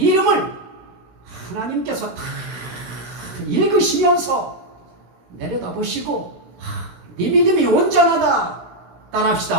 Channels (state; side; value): late; left; 16 ms